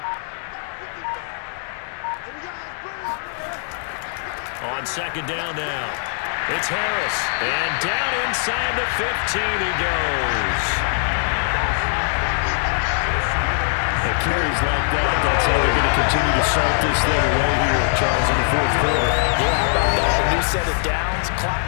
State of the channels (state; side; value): silent; right; digital silence